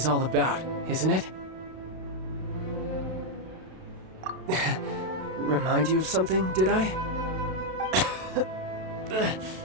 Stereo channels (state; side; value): late; left; 32 ms